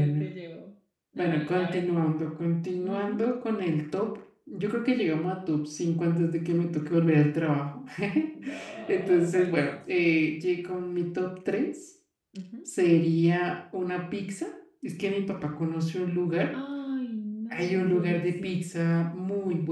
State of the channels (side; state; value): both; identical; correlation 1.00